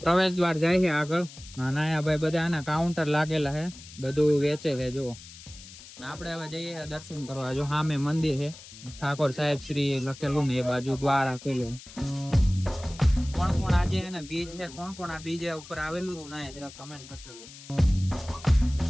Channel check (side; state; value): left; noise; hiss, 17 dB below the sound